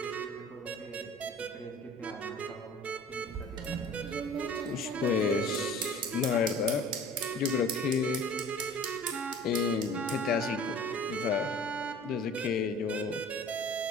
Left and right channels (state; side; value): normal; both; correlation 0.45